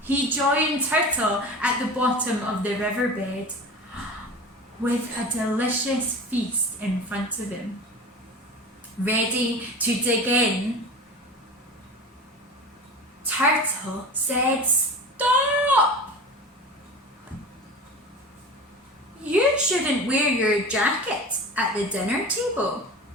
He joined Turtle at the bottom of the riverbed with a delicious feast in front of him. Ready to dig in, Turtle said, "Stop! You shouldn't wear your jacket at the dinner table."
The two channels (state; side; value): normal; both; correlation 0.33